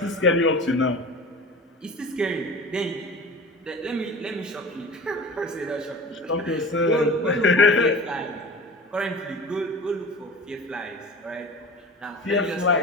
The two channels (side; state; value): both; normal; correlation 0.37